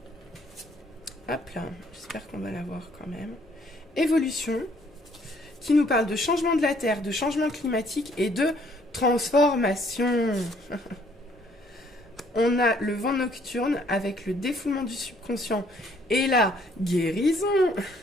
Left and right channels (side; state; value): both; normal; correlation 0.64